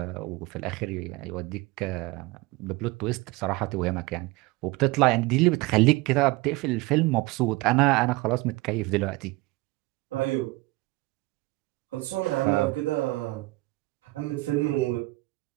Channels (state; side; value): quieter; left; 21.7 dB